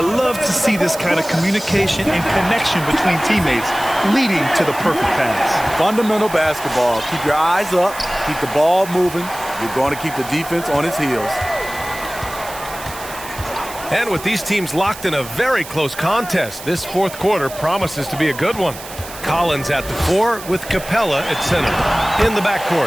to see this kind of communication and connection between teammates leading to the perfect pass. Fundamental basketball. Keep your eyes up. Keep the ball moving. You're going to keep the defense on its heels. And with these teams locked in a very close contest, this fourth quarter promises to be a good one. Collins at the 4 with Capella at center. In the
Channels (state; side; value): noise; right; hiss, 14 dB below the sound